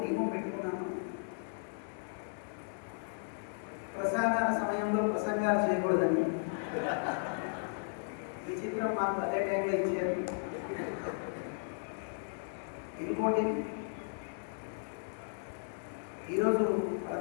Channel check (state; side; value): silent; right; digital silence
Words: నియమం పెట్టుకున్నాను. ప్రసాదాల సమయంలో ప్రసంగాలు చేయకూడదని. విచిత్రం, మాకు అదే టైంలో ఇచ్చారు. ఇంకోటి, ఈరోజు